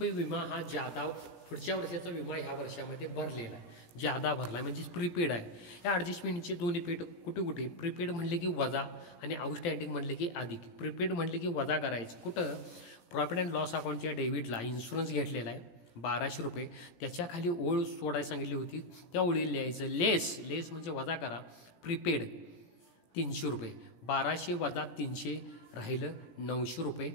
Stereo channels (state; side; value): late; right; 17 ms